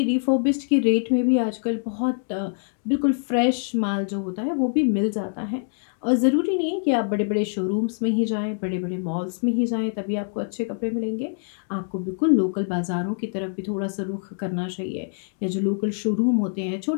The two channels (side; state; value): right; silent; digital silence